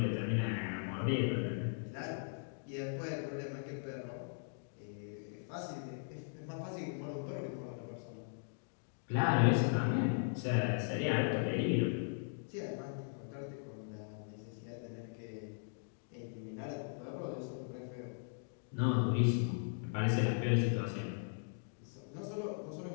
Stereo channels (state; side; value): silent; right; digital silence